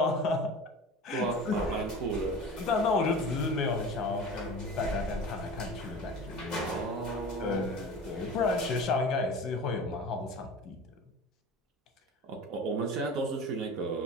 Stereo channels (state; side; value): normal; both; correlation 0.35